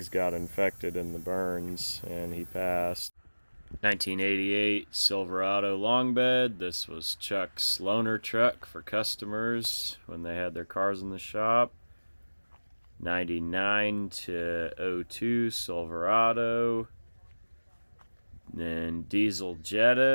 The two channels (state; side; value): inverted; both; correlation -1.00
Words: got infected in the burns and he passed. 1988 Silverado long bed. This was Chuck's loaner truck for customers when they had their cars in the shop. 99 to 02 Silverado. Then diesel